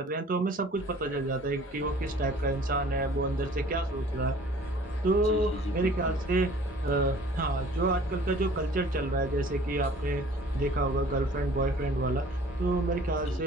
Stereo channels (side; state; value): both; normal; correlation 0.51